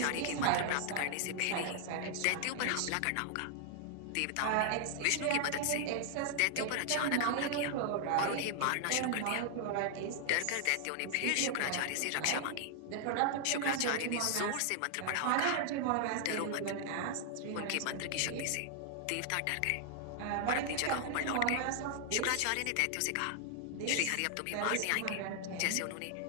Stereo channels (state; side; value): different; both; correlation 0.00